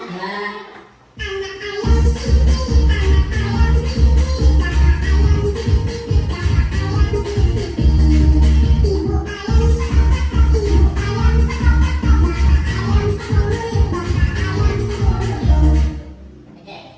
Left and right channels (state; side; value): identical; both; correlation 1.00